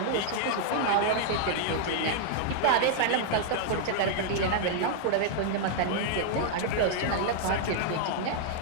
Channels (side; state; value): both; different; correlation -0.01